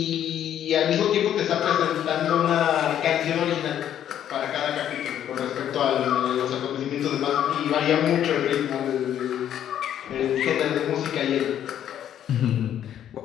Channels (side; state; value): right; quieter; 10.4 dB